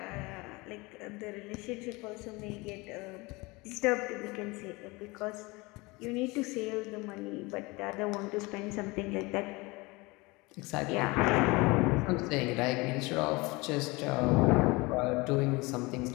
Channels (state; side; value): quieter; right; 24.3 dB